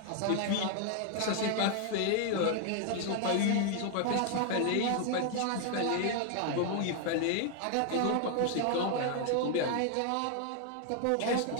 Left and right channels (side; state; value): both; different; correlation 0.00